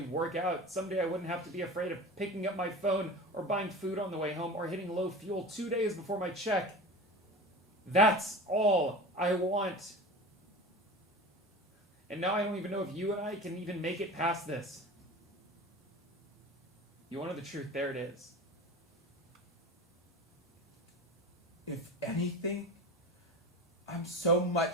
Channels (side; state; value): both; normal; correlation 0.33